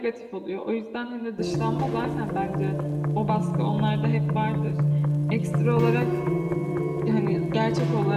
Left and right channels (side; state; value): both; identical; correlation 1.00